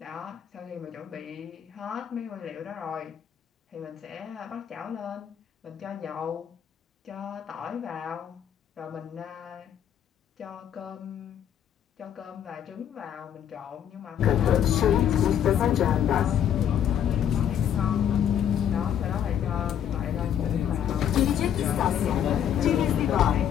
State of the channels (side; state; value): right; quieter; 9.5 dB